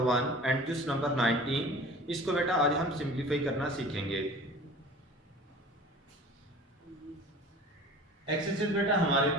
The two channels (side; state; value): both; normal; correlation 0.42